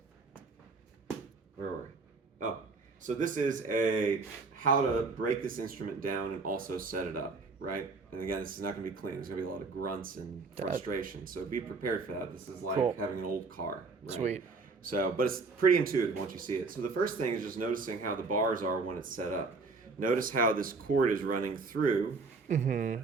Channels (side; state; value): left; quieter; 4.1 dB